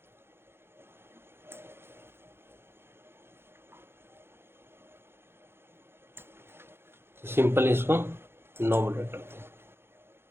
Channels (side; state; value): left; late; 0.11 ms